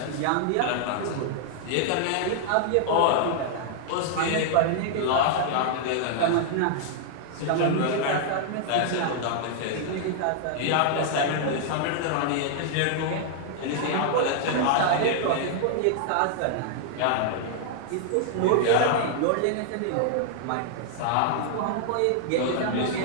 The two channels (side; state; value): both; different; correlation -0.01